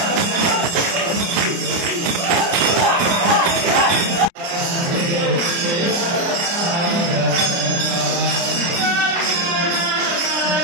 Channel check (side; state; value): left; late; 29 ms